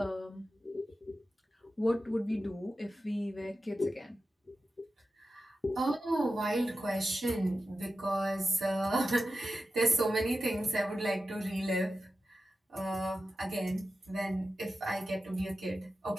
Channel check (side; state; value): both; normal; correlation 0.92